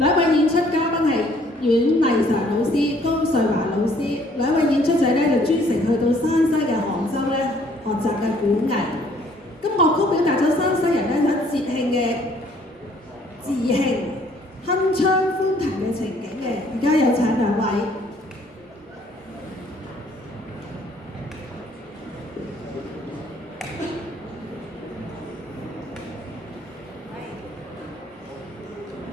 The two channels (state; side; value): normal; both; correlation 0.61